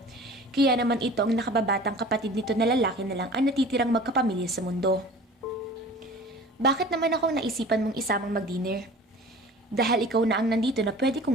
Kaya naman ito ang nakababatang kapatid nito na lalaki na lang ang natitirang magkapamilya sa mundo. Bakit naman akong naisipan mong isamang mag-dinner? Dahil ikaw na ang nandito na pwede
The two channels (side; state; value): both; normal; correlation 0.42